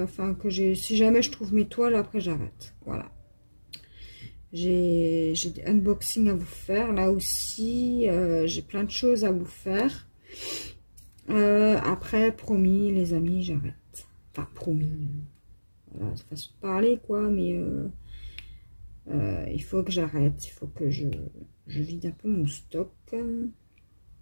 enfin, si jamais je trouve mes toiles, après, j'arrête. Voilà. J'ai des unboxings à vous faire. Là aussi, j'ai plein de choses à vous faire. Après, promis, les amis, j'arrête. Enfin, promis. Voilà, c'est façon de parler, quoi, mais il faut que j'arrête. Il faut que je vide un peu mon stock.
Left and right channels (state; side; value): inverted; both; correlation -1.00